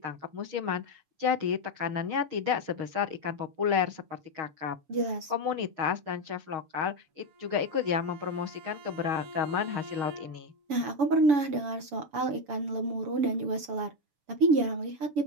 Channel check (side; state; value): left; late; 7.0 ms